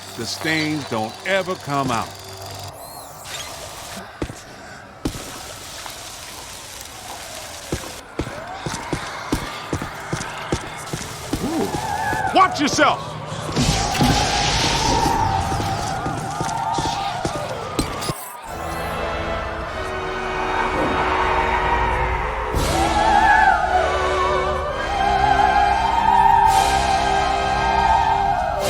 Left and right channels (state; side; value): identical; both; correlation 1.00